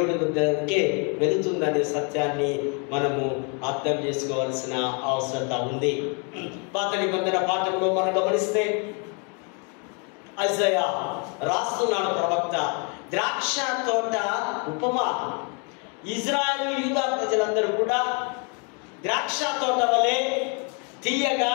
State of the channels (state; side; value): quieter; right; 36.4 dB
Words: దగ్గరికి వెళుతుందనే సత్యాన్ని మనము అర్థం చేసుకోవాల్సిన అవసరత ఉంది. పాత నిబంధన పాఠంలో మనం గమనిస్తే ఐజయా రాస్తున్నాడు ప్రవక్త, ద్రాక్ష తోట ఉపమా. ఇజ్రాయేలు యూదా ప్రజలందరూ కూడా ద్రాక్ష తోట వలె తీయగా,